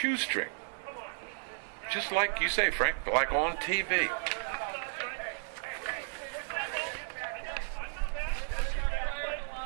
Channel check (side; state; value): left; silent; 55 dB below the other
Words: Just like you say, Frank, like on TV.